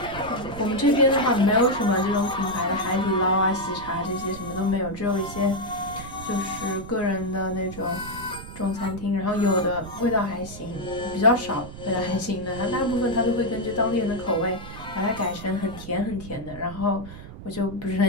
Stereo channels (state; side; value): noise; right; rumble, 13 dB below the sound